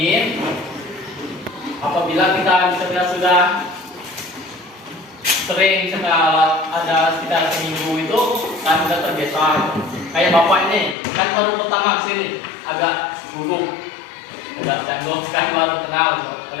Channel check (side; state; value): right; drops out; at 11.0 s